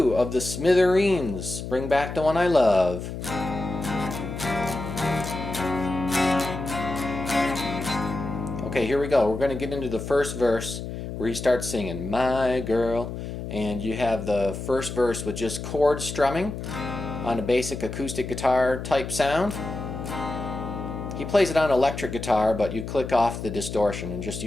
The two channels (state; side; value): noise; left; hum, 7 dB below the sound